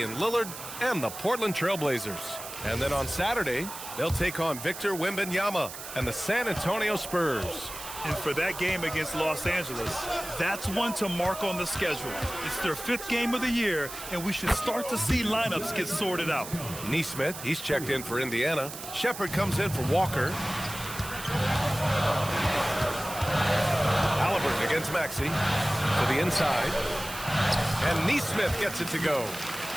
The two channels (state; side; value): noise; right; hiss, 11 dB below the sound